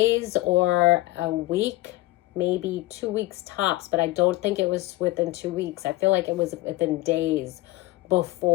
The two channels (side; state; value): right; quieter; 19.1 dB